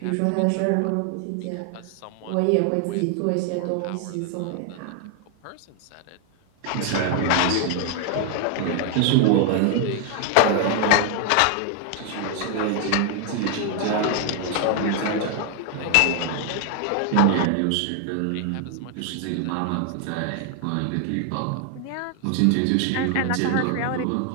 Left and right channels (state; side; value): different; both; correlation 0.00